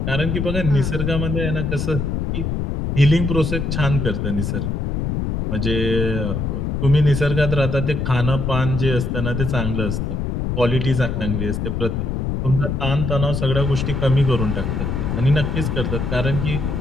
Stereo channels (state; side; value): noise; left; rumble, 1 dB below the sound